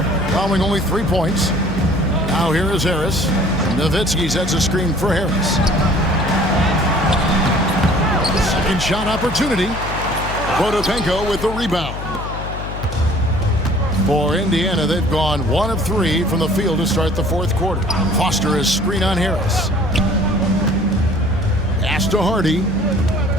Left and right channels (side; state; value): left; noise; hum, 8 dB below the sound